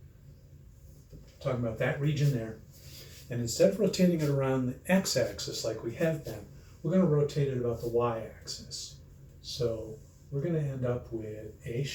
Talking about that region there. And instead of rotating it around the x-axis like we have been, we're going to rotate it about the y-axis. So we're going to end up with a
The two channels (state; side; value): identical; both; correlation 1.00